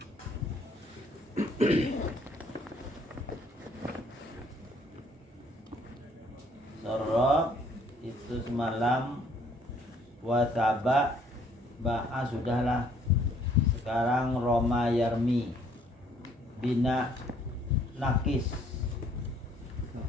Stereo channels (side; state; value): both; normal; correlation 0.62